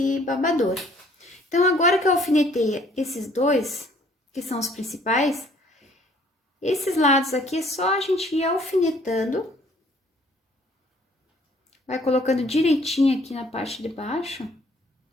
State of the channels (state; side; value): normal; both; correlation 0.59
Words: babador. Então, agora que eu alfinetei esses dois, que são os principais, esses lados aqui é só a gente ir alfinetando. Vai colocando direitinho aqui na parte de baixo,